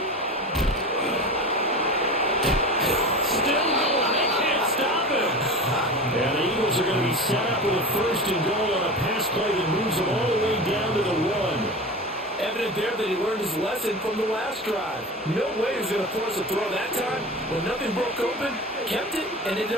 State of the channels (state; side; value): normal; both; correlation 0.30